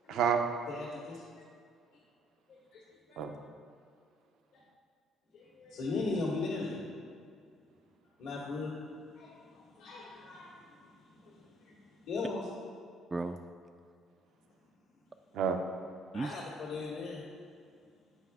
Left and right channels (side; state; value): both; normal; correlation 0.62